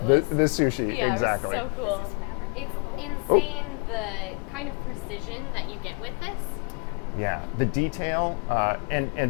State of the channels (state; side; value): quieter; right; 34.3 dB